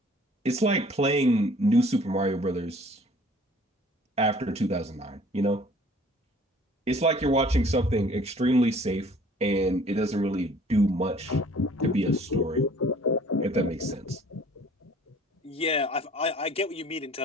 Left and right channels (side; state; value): both; normal; correlation 0.53